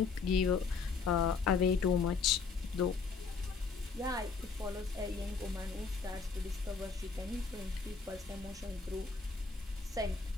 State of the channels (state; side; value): quieter; right; 4.9 dB